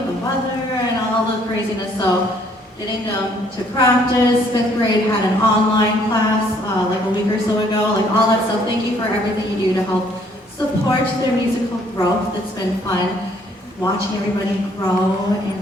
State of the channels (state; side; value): normal; both; correlation 0.64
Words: the weather and all the craziness. So getting them to practice, 5th grade had an online class like a week or so ago, like all that stuff. Thank you for everything you do to help support their musical growth. It's been fun watching everybody grow